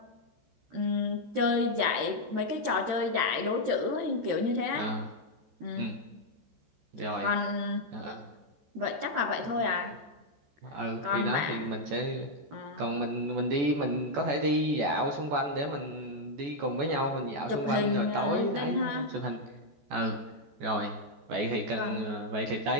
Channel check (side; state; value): left; late; 14 ms